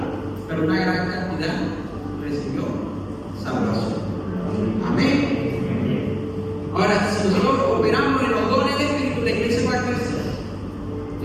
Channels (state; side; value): identical; both; correlation 1.00